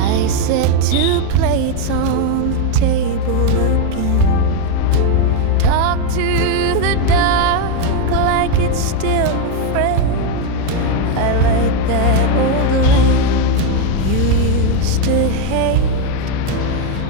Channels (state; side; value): different; both; correlation 0.02